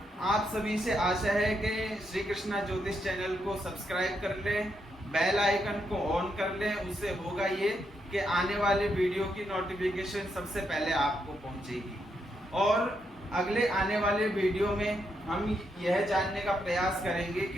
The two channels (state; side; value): normal; both; correlation 0.80